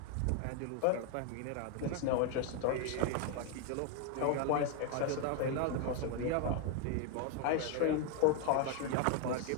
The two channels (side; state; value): both; different; correlation 0.01